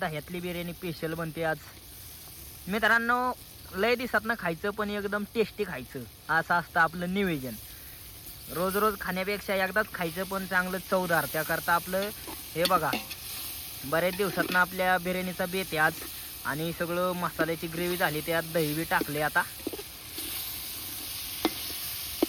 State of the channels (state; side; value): identical; both; correlation 1.00